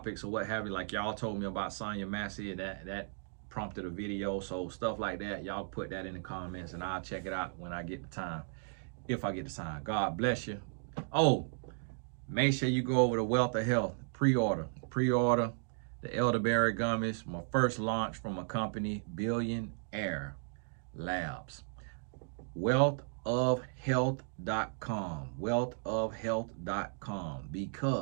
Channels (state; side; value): silent; left; digital silence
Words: or what have you, like y'all told me about Sonya Massey, that prompted a video. So stuff like that, y'all put that in the comments and I'll check it out when I get the time. If I get the time. God bless you. Oh, make sure you go over to Wealth of Health. Pre-order the elderberry gummies. My first launch from a company, Billionaire Labs. Wealthofhealth.com. Wealthofhealth.com.